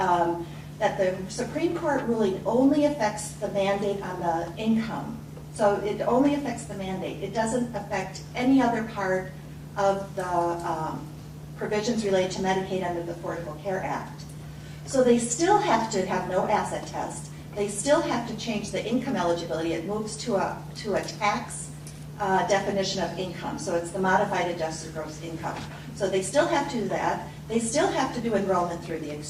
that the Supreme Court ruling only affects the mandate on the income. So it only affects the mandate. It doesn't affect any other part of the provisions related to Medicaid under the Affordable Care Act. So they still have to have no asset test. They still have to change the income eligibility. It moves to a tax definition of income. So it's the modified adjusted gross income. So they still have to do that. They still have to do enrollment through the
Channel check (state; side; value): identical; both; correlation 1.00